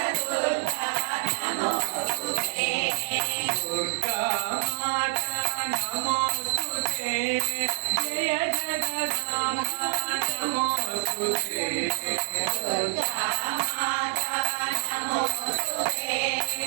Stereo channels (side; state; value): left; silent; 57 dB below the other